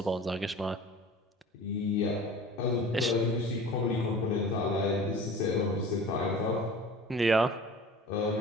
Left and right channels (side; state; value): both; normal; correlation 0.41